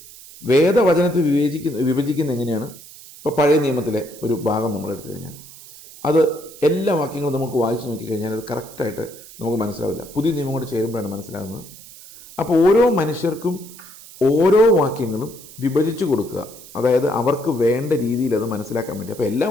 വേദവചനത്തെ വിഭജിക്കുന്ന എങ്ങനെയാണ്? ഇപ്പോൾ പഴയ നിയമത്തിലെ ഒരു ഭാഗം നമ്മൾ എടുത്തു കഴിഞ്ഞാൽ അത് എല്ലാ വാക്യങ്ങളും നമുക്ക് വായിച്ചു നോക്കിക്കഴിഞ്ഞാൽ അത് കറക്റ്റായിട്ട് നമുക്ക് മനസ്സിലാവില്ല. പുതിയ നിയമം കൂടെ ചേരുമ്പോഴാണ് മനസ്സിലാകുന്നത്. അപ്പോൾ ഓരോ മനുഷ്യർക്കും ഓരോ വാക്യങ്ങളും വിഭജിച്ചു കൊടുക്കുക, അതായത് അവർക്ക് വേണ്ട രീതിയിൽ അത് മനസ്സിലാക്കാൻ വേണ്ടി. അപ്പോൾ എല്ലാ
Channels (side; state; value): right; noise; hiss, 18 dB below the sound